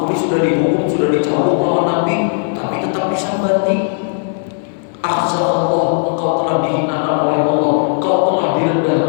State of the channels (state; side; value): silent; right; digital silence